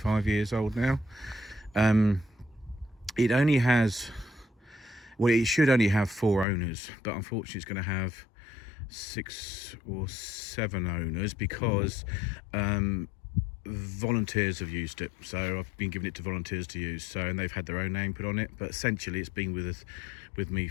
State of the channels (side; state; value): right; drops out; at 6.5 s